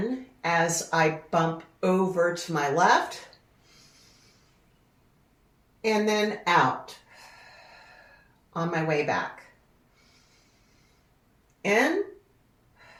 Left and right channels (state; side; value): identical; both; correlation 1.00